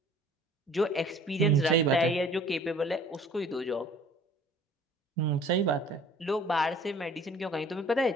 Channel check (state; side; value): normal; both; correlation 0.51